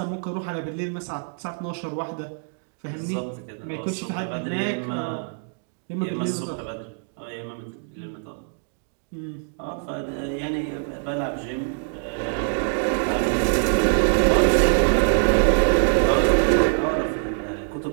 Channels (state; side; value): silent; left; 62 dB below the other